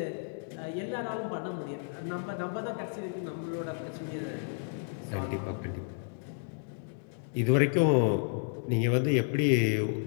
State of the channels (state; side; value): silent; right; digital silence